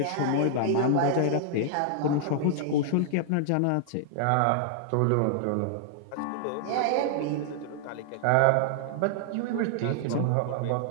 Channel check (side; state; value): both; different; correlation -0.01